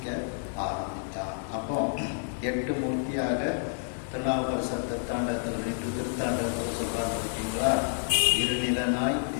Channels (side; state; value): right; silent; digital silence